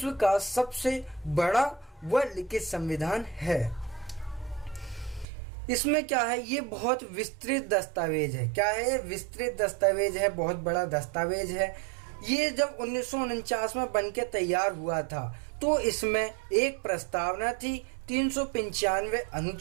का सबसे बड़ा वह लिखित संविधान है। इसमें क्या है? ये बहुत विस्तृत दस्तावेज है। क्या है? ये विस्तृत दस्तावेज है, बहुत बड़ा दस्तावेज है। ये जब 1949 में बनके तैयार हुआ था तो इसमें एक प्रस्तावना थी, 395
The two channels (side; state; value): left; drops out; at 5.2 s